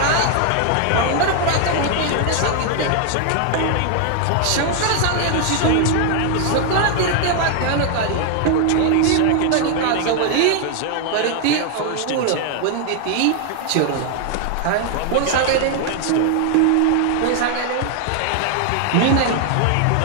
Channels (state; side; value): different; both; correlation 0.00